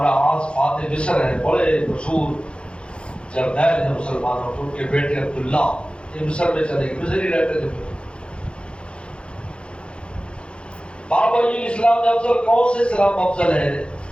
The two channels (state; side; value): late; right; 0.057 ms